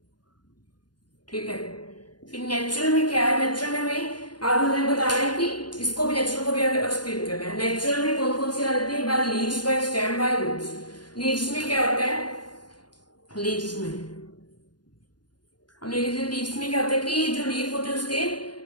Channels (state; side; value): late; right; 0.70 ms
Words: ठीक है, फिर नेचुरल में क्या है, नेचुरल में हमें आगे मुझे बताना है कि इसको भी नेचुरल को भी आगे एक्सप्लेन करना है। नेचुरल में कौन कौन सी आ जाती है, by leaves, by stem, by roots. Leaves में क्या होता है, लीव्स में क्या होता है कि जो लीफ होते हैं उसके